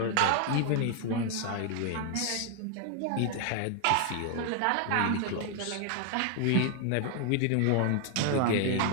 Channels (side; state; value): both; different; correlation 0.00